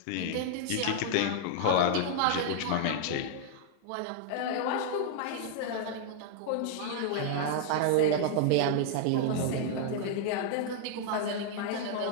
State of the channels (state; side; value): different; both; correlation 0.00